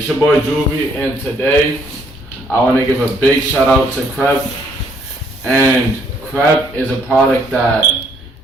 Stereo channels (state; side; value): normal; both; correlation 0.67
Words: your boy Juvi, and today I want to give a big shout out to Crep. And Crep is a product that